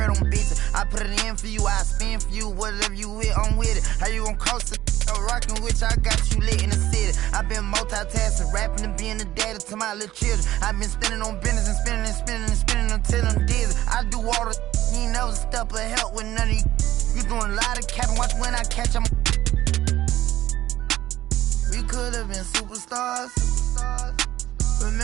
on bitches. I put it in for you, I spin for you. Whatever you with, I'm with it. How you gon' cross the rockin' with you? I got you lit in the city. I been multitasking, rapping and being the daddy to my little children. I been spending on business and spending and spending and spending until I'm dizzy. I do all the you ain't never step of help with none of you. You doing a lot of capping, watch when I catch them. We could have been superstars.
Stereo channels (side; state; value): left; quieter; 14.3 dB